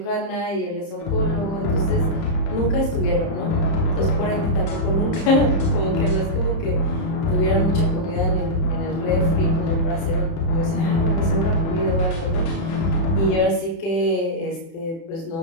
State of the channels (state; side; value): late; right; 30 ms